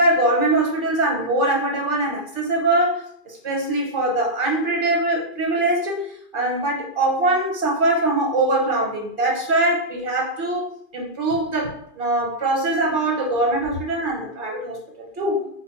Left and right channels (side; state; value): right; late; 2.4 ms